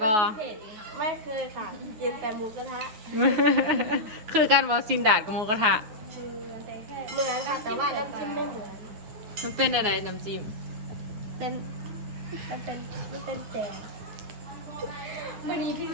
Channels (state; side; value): late; left; 9.5 ms